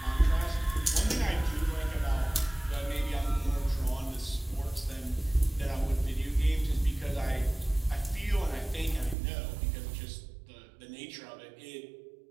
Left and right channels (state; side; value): drops out; left; at 9.2 s